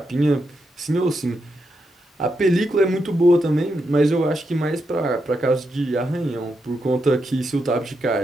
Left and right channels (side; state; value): both; normal; correlation 0.83